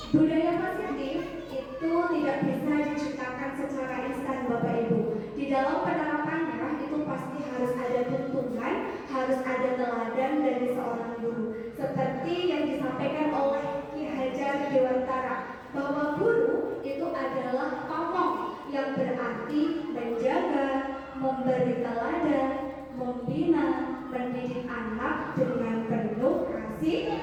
budaya positif itu tidak bisa diciptakan secara instan, Bapak Ibu. Di dalam penerapannya itu pasti harus ada tuntunan, harus ada teladan dari seorang guru. Seperti yang disampaikan oleh Ki Hajar Dewantara, bahwa guru itu adalah pamong, yang berarti menjaga, memberi teladan, membina, mendidik anak dengan penuh kasih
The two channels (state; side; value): identical; both; correlation 1.00